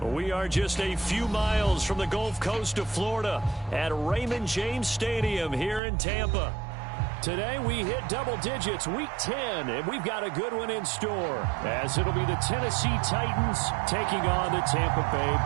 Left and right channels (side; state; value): left; drops out; at 5.8 s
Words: We are just a few miles from the Gulf Coast of Florida at Raymond James Stadium here in Tampa. Today we hit double digits, week 10, and we've got a good one in store, as it'll be the Tennessee Titans taking on the Tampa